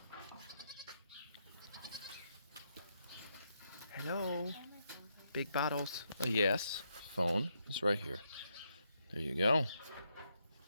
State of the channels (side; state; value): both; inverted; correlation -0.79